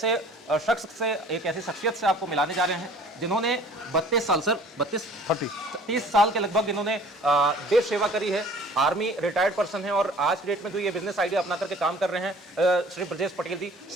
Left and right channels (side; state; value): both; normal; correlation 0.50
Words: शख्स से, एक ऐसी शख्सियत से आपको मिलाने जा रहे हैं जिन्होंने 32 साल सर 30 साल के लगभग इन्होंने देश सेवा करी है। आर्मी रिटायर्ड पर्सन है और आज की डेट में तो ये बिजनेस आइडिया अपना करके काम कर रहे हैं। श्री ब्रजेश पटेल जी,